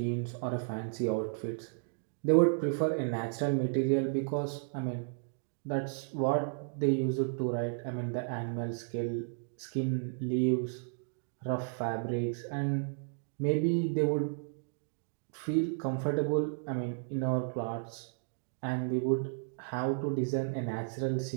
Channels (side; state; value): left; silent; digital silence